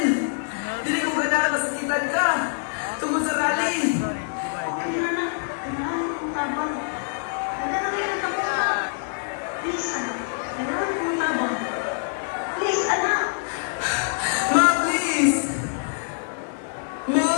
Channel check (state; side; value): silent; right; 62 dB below the other